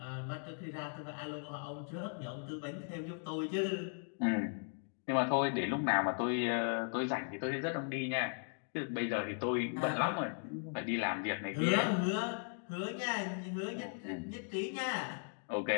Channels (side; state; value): right; silent; 53 dB below the other